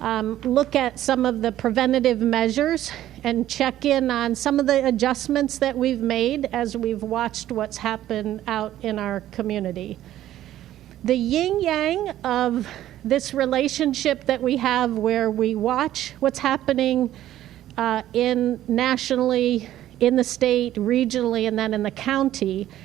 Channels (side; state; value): left; quieter; 13.1 dB